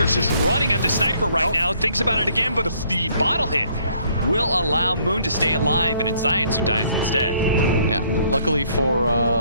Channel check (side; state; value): both; inverted; correlation -0.65